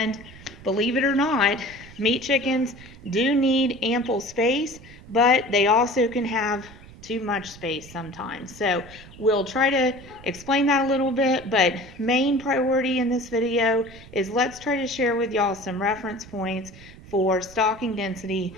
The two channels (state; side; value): noise; right; rumble, 19 dB below the sound